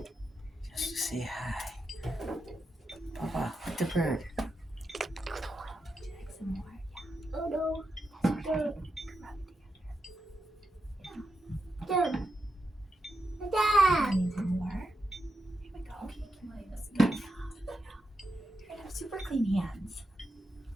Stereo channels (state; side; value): normal; both; correlation 0.86